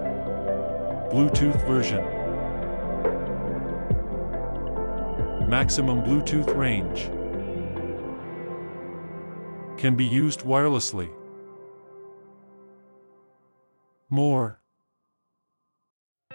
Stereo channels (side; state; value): both; inverted; correlation -1.00